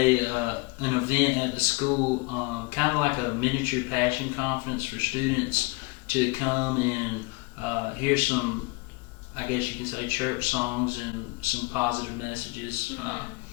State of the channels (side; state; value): right; quieter; 26.4 dB